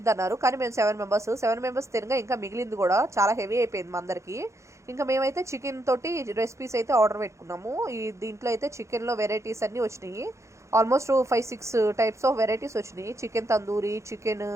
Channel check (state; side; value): late; left; 0.14 ms